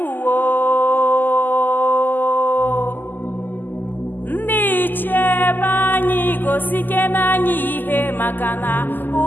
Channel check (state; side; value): late; right; 0.089 ms